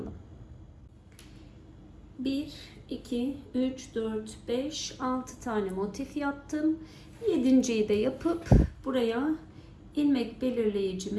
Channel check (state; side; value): identical; both; correlation 1.00